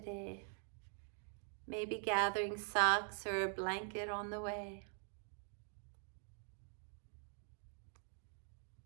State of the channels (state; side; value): silent; left; digital silence